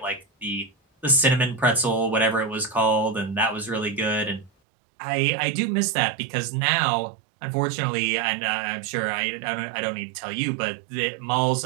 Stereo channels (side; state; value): left; drops out; at 4.5 s